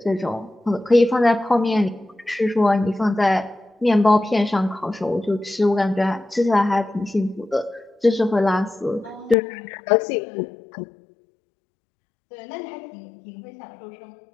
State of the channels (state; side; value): drops out; right; at 9.3 s